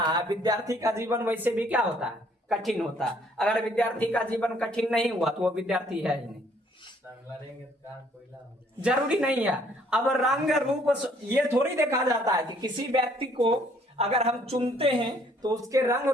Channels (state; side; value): normal; both; correlation 0.63